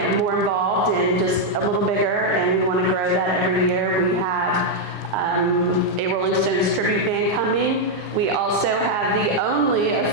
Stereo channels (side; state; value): both; normal; correlation -0.01